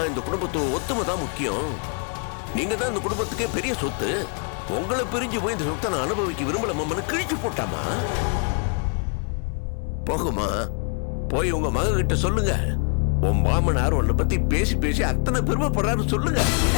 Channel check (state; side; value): quieter; right; 39.9 dB